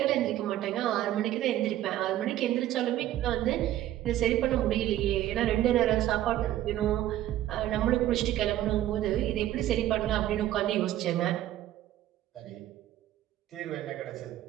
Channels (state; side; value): quieter; left; 13.3 dB